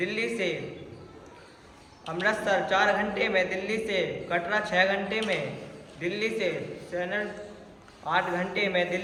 से अमृतसर 4 घंटे में, दिल्ली से कटरा 6 घंटे में, दिल्ली से चेन्नई 8 घंटे में,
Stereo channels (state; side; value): identical; both; correlation 1.00